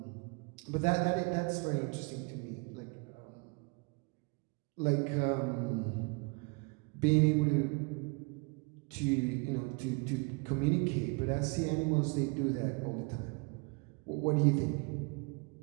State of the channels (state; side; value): quieter; left; 31.5 dB